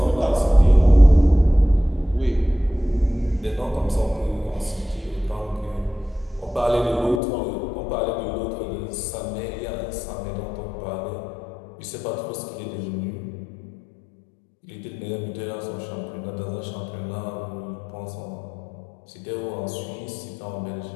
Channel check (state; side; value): drops out; right; at 7.2 s